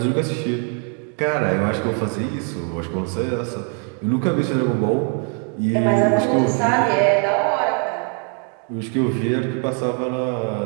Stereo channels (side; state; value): left; quieter; 37.0 dB